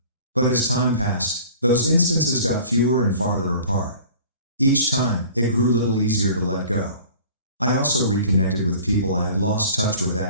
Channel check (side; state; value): both; inverted; correlation -0.46